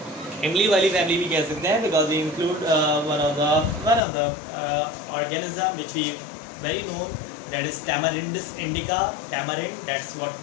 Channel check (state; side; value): drops out; right; at 4.0 s